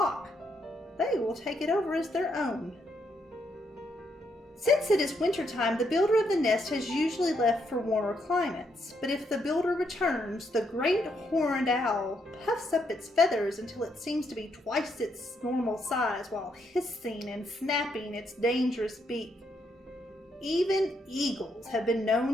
they will take it over as their own. Since it is wintertime, the builder of the nest has usually left for warmer climates. But if the builder returns, the great horned owl puffs up its feathers until it seems to be twice its normal size while hissing and snapping its dangerous beak. Even eagles have been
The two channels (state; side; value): normal; both; correlation 0.76